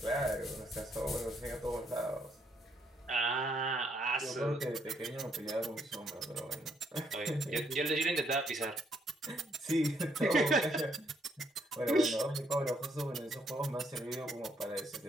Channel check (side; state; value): both; normal; correlation 0.72